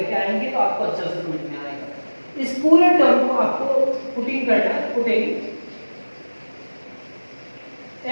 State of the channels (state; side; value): inverted; both; correlation -1.00